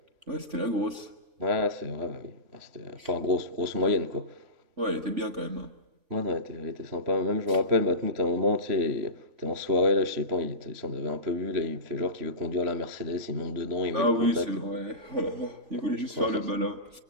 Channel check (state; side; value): late; left; 3.4 ms